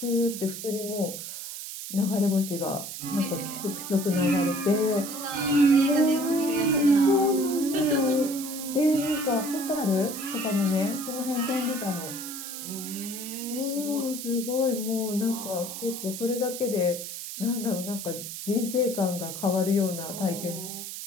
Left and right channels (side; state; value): right; noise; hiss, 8 dB below the sound